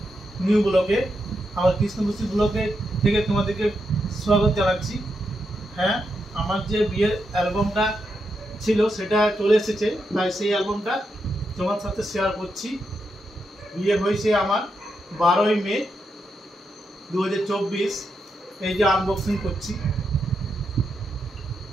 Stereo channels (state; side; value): normal; both; correlation 0.84